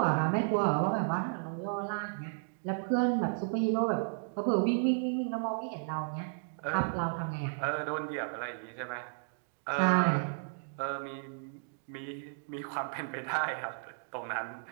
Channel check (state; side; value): silent; left; digital silence